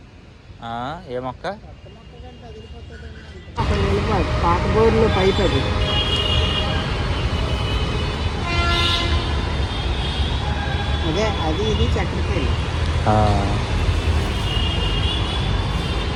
ఏ మొక్క? పాత బోర్లు పైప్ అది. అదే అది ఇది చక్కెరకేళి.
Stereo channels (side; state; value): both; identical; correlation 1.00